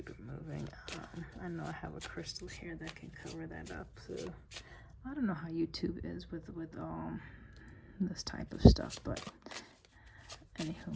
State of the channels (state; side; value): identical; both; correlation 1.00